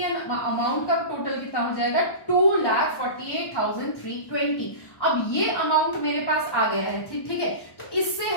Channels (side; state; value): right; late; 1.1 ms